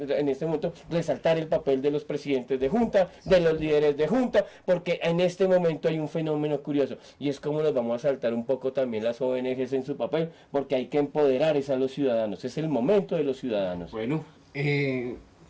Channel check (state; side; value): identical; both; correlation 1.00